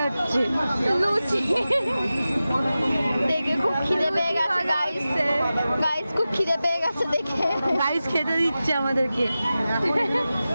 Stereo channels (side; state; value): both; inverted; correlation -0.94